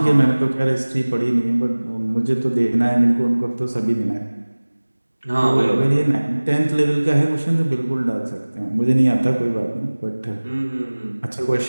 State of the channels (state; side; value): inverted; both; correlation -1.00